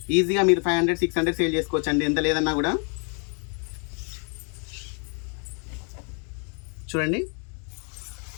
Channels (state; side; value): quieter; right; 39.5 dB